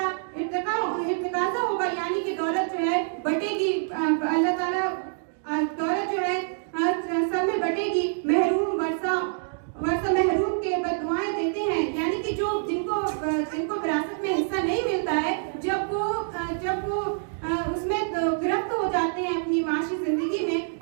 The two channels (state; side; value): silent; left; digital silence